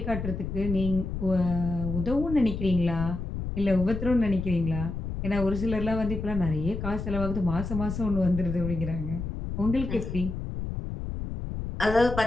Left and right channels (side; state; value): left; noise; rumble, 5 dB below the sound